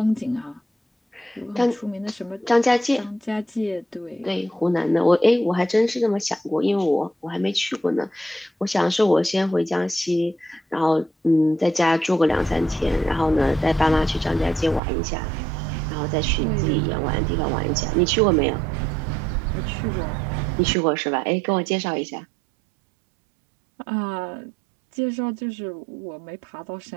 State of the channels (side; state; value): left; drops out; at 14.8 s